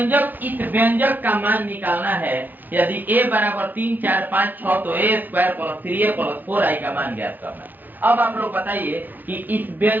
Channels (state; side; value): late; left; 0.085 ms